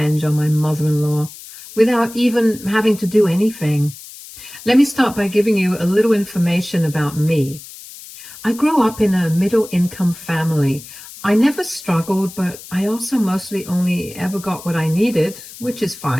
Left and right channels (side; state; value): left; noise; hiss, 16 dB below the sound